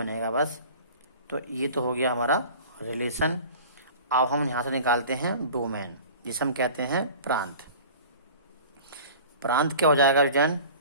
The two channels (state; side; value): inverted; both; correlation -0.41